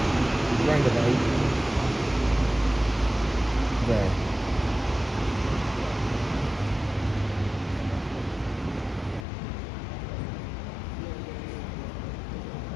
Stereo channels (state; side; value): drops out; right; at 9.2 s